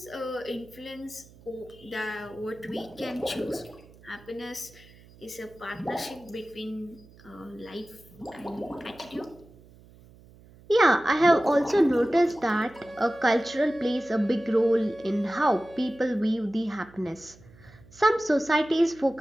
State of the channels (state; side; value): noise; right; hum, 24 dB below the sound